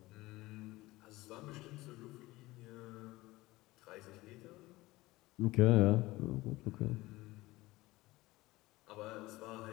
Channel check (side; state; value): right; quieter; 19.5 dB